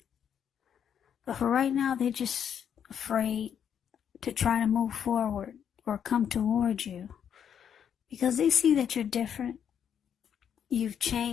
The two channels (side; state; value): right; quieter; 8.4 dB